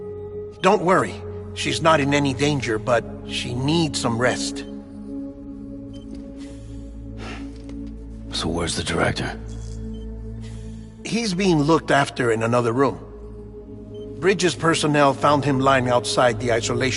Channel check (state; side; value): identical; both; correlation 1.00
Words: Don't worry, she's not in any danger, but she needs some rest. So where's the director? He's being looked after in another room. Bridges personnel found him lying outside the